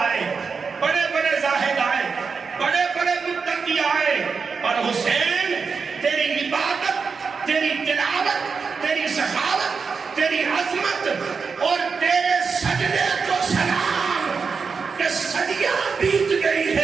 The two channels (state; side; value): quieter; left; 5.3 dB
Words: بڑے بڑے زاہد آئے، بڑے بڑے متقی آئے، اور حسین تیری عبادت، تیری تلاوت، تیری سخاوت، تیری عظمت اور تیرے سجدے کو سلام کہ صدیاں بیت گئی